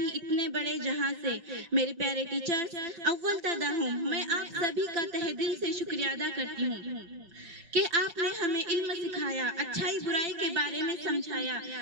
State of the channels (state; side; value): late; left; 5.4 ms